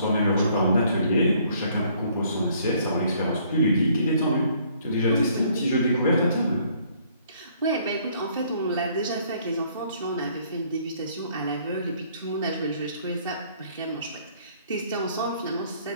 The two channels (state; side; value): inverted; both; correlation -0.62